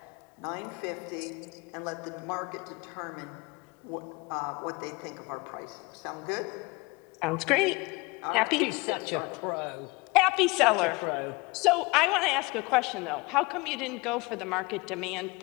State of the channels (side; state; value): right; quieter; 25.2 dB